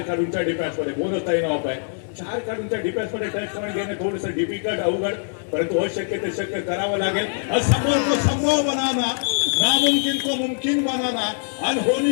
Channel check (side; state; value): right; silent; digital silence